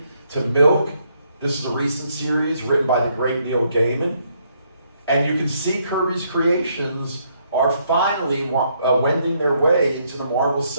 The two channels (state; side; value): inverted; both; correlation -0.72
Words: to milk. This is a recent series written by the great Neil Gaiman. And you can see Kirby's creations are finally wending their way into the Marvel